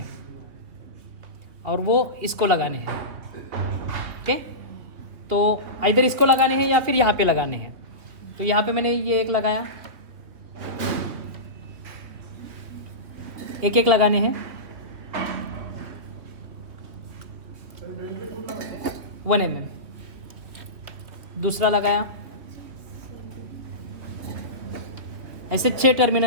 और वो इसको लगाने हैं। ओके, तो इधर इसको लगाने हैं या फिर यहाँ पे लगाने हैं। तो यहाँ पे मैंने ये एक लगाया, एक एक लगाने हैं। 1 mm, दूसरा लगाया। ऐसे 6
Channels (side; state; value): left; late; 3.4 ms